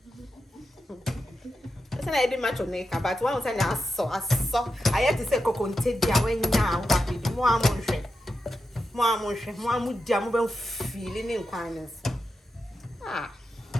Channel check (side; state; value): both; normal; correlation 0.88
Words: I did much on neck, but one was I saw. I had to say coconte dia when now happy. More mood jam feeling in kindness.